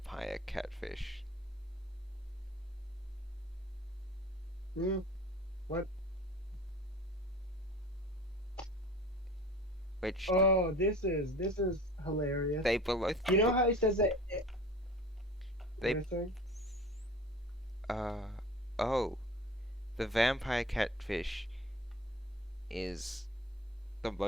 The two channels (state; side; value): normal; both; correlation 0.41